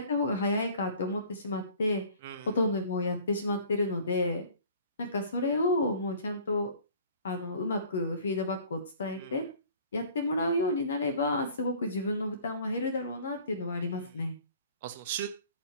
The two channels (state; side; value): inverted; both; correlation -0.49